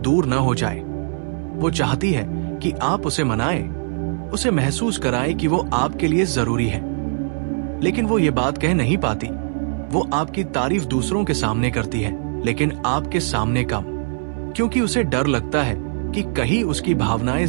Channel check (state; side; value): silent; left; 62 dB below the other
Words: न हो जाए। वो चाहती है कि आप उसे मनाएं, उसे महसूस कराएं कि वो आपके लिए जरूरी है। लेकिन वो ये बात कह नहीं पाती। वो आपकी तारीफ दूसरों के सामने करती है, लेकिन आपके सामने कम, क्योंकि उसे डर लगता है कि कहीं उसकी भावनाएं